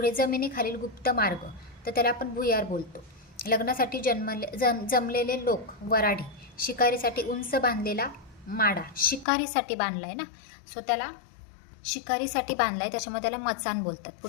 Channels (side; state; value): right; drops out; at 9.2 s